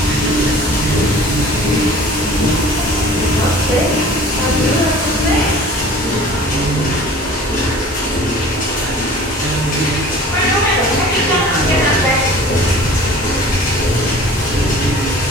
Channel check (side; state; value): both; normal; correlation 0.45